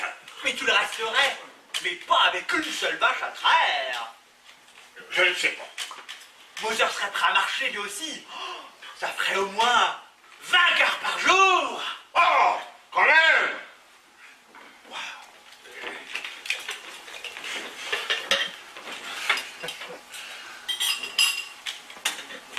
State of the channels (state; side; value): identical; both; correlation 1.00